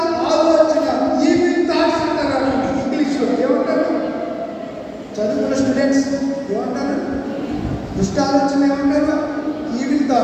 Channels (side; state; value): both; identical; correlation 1.00